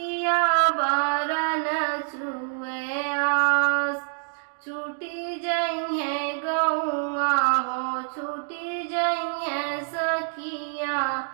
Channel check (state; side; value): silent; left; digital silence